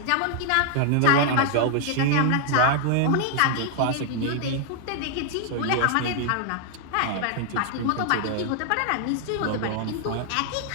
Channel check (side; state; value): both; different; correlation 0.00